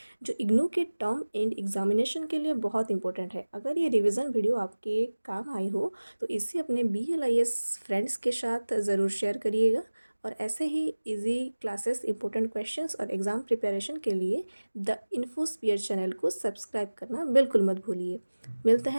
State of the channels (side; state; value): both; inverted; correlation -1.00